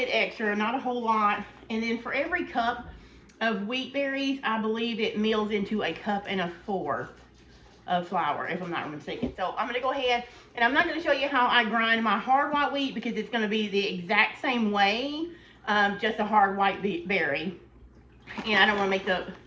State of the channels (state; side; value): identical; both; correlation 1.00